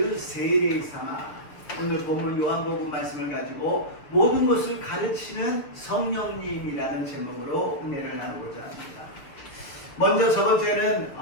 聖霊様。 오늘 본문 요한복음 말씀을 가지고 모든 것을 가르치는 성령님이라는 제목으로 은혜를 나누고자 합니다. 먼저 저번 주에는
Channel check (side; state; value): right; late; 6.5 ms